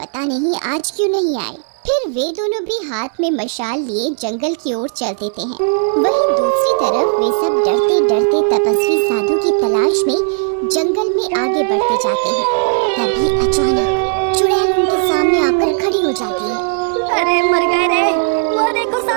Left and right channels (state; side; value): silent; left; 68 dB below the other